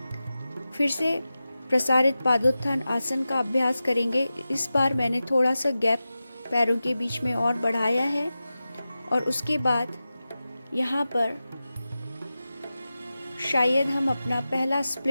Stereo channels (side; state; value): both; inverted; correlation -0.94